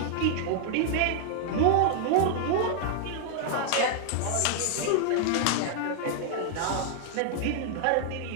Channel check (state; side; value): different; both; correlation -0.01